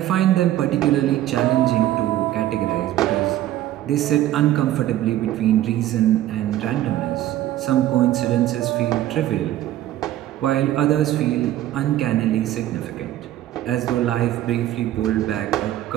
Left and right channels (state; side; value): quieter; left; 13.5 dB